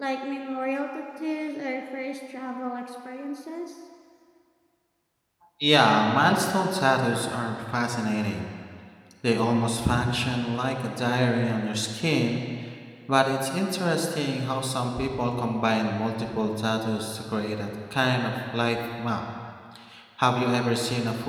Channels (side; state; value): both; identical; correlation 1.00